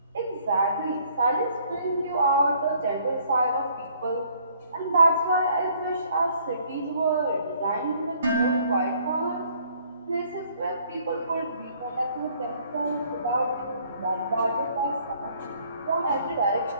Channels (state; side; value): inverted; both; correlation -0.62